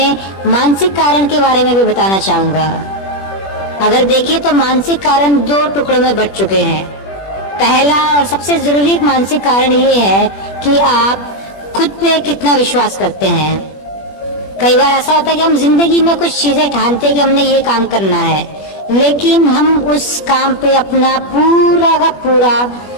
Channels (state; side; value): late; right; 21 ms